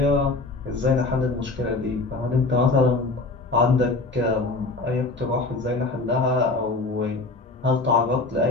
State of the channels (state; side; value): quieter; right; 3.4 dB